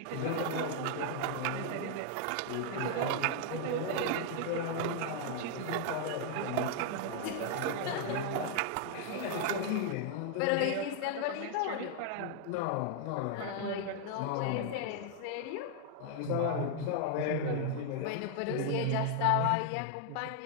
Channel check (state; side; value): different; both; correlation 0.00